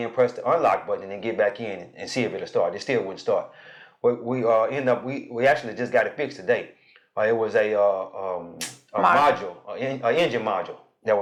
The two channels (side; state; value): both; identical; correlation 1.00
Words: press the unlock button, and then get back in and see if it'll start. It still wouldn't start. We actually just got it fixed today. It was a module, an engine module that